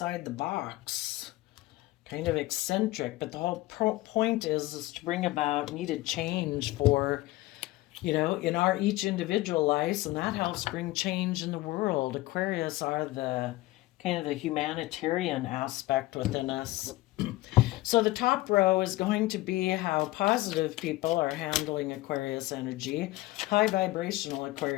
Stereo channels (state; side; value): quieter; right; 18.5 dB